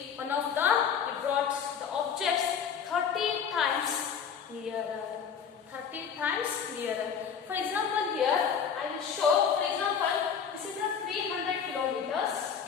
brought the objects 30 times nearer. 30 times nearer. For example, here I will show. For example, this is a 300 kilometers.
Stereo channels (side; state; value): right; quieter; 7.2 dB